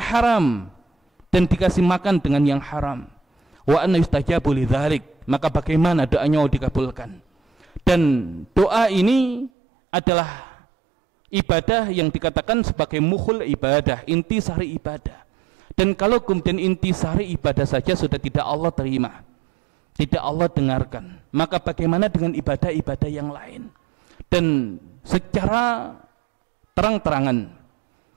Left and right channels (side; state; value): left; drops out; at 9.5 s